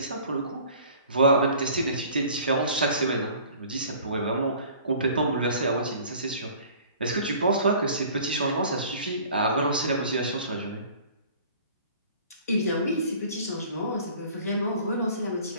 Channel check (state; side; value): inverted; both; correlation -0.49